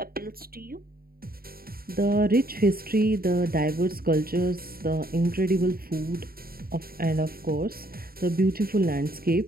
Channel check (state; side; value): late; left; 0.43 ms